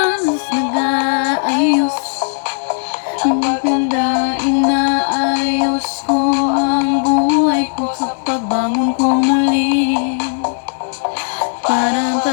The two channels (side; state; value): right; silent; 69 dB below the other